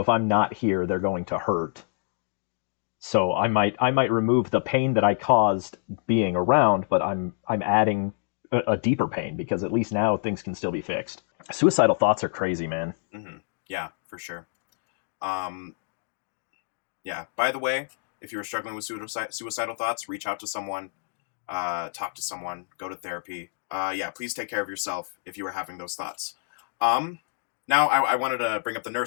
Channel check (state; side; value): silent; right; digital silence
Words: I'm not here, they're going to hurt. So I might remove the pain that I caused being around, but I'm adding a deeper pain, because at least now things can still be fixed. Suicidal thoughts are crazy, man. Mm-hmm. Yeah, for sure. Um, yeah. By the way, if you're struggling with suicidal thoughts, reach out to someone, talk to someone, go to therapy. Yeah, please take care of yourself if you are having those thoughts. Um, Now, I wanted to bring up the